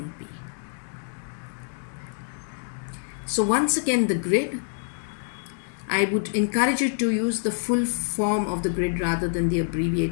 So once again the grid, I would encourage you to use the full form of the grid rather than the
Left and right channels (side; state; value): right; silent; digital silence